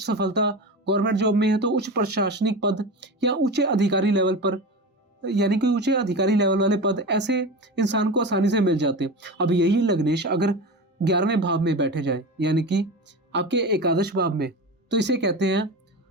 सफलता, गवर्नमेंट जॉब में है तो उच्च प्रशासनिक पद या ऊंचे अधिकारी लेवल पर, यानी कि ऊंचे अधिकारी लेवल वाले पद ऐसे इंसान को आसानी से मिल जाते हैं। अब यही लग्नेश अगर 11वें भाव में बैठे जाए, यानी कि आपके एकादश भाव में, तो इसे कहते हैं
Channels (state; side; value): normal; both; correlation 0.26